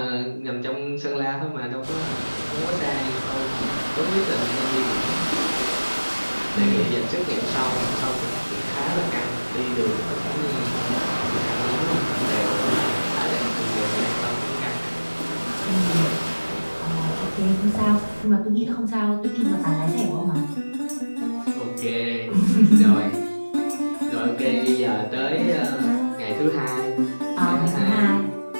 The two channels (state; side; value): inverted; both; correlation -1.00